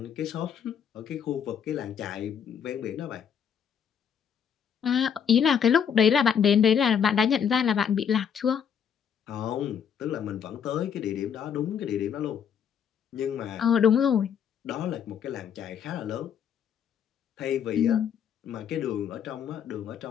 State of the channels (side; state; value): right; quieter; 7.8 dB